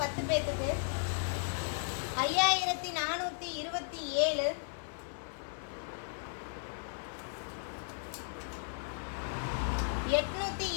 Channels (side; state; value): right; silent; digital silence